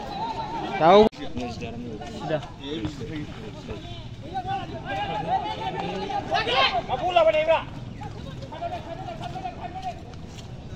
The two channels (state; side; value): identical; both; correlation 1.00